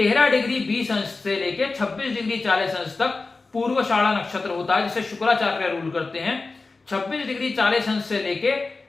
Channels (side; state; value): right; quieter; 3.8 dB